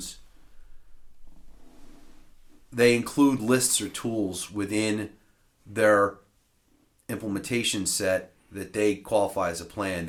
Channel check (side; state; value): both; identical; correlation 1.00